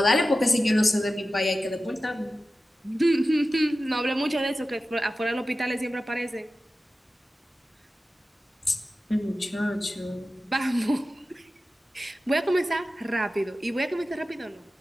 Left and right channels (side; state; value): both; normal; correlation 0.94